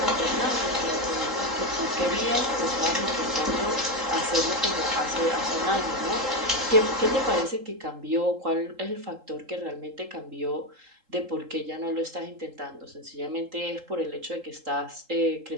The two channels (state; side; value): late; left; 3.8 ms